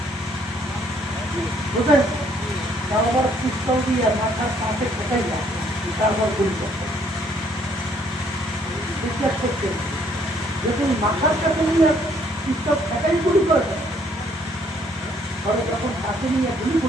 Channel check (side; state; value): right; noise; hum, 29 dB below the sound